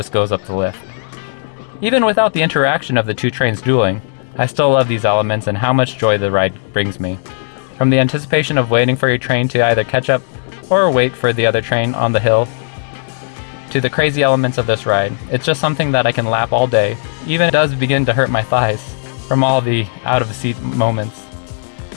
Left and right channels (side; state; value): right; silent; digital silence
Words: goes up the lift. Even without the interaction of the 2 trains dueling, I still love these elements and how much joy the ride brings me. From the anticipation of waiting for your train to either catch up or wait for the other train on the hill, to the crazy elements of this ride, it's just something that I can lap all day. Even it does begin to hurt my thighs from all the out-of-seat moments.